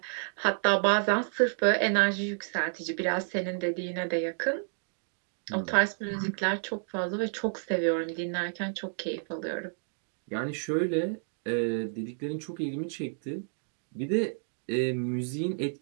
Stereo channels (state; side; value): silent; left; digital silence